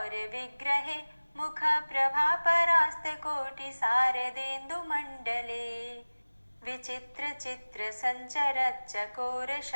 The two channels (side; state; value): both; inverted; correlation -1.00